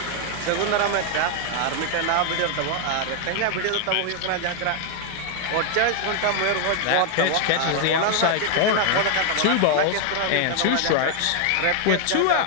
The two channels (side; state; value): both; different; correlation 0.00